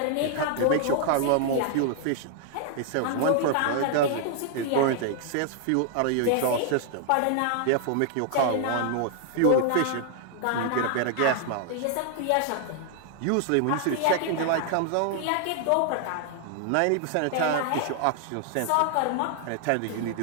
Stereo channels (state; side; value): different; both; correlation 0.00